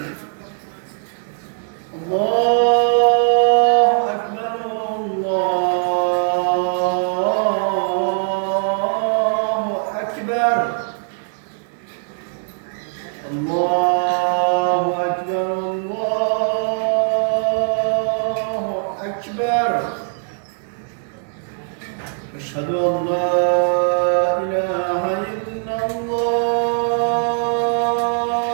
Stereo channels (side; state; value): left; silent; 65 dB below the other